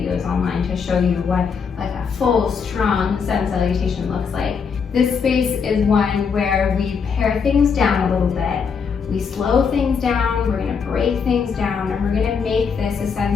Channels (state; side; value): quieter; right; 6.0 dB